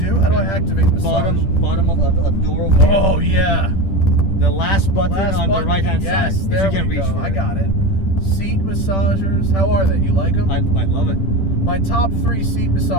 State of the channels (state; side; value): late; right; 10 ms